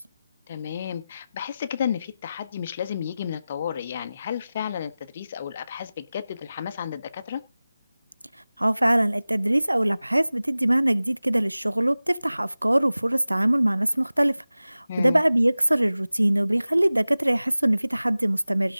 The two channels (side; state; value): both; inverted; correlation -0.97